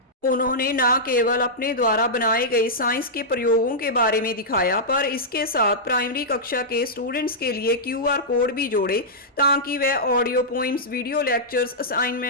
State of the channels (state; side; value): normal; both; correlation -0.11